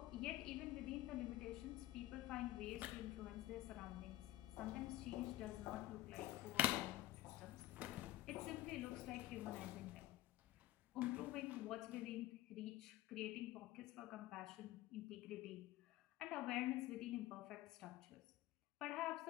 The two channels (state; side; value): quieter; right; 15.6 dB